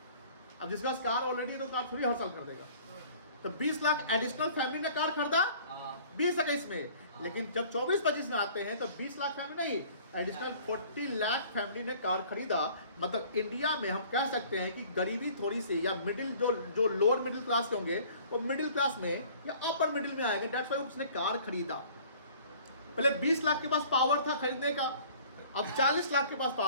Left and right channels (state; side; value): inverted; both; correlation -0.51